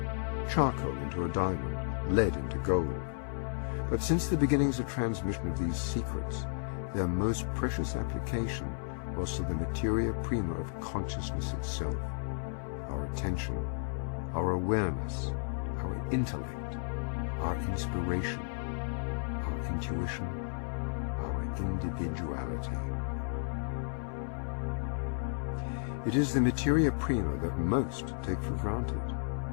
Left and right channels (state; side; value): silent; right; 56 dB below the other